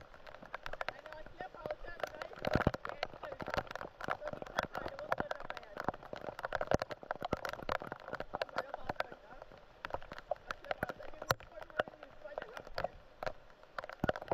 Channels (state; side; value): identical; both; correlation 1.00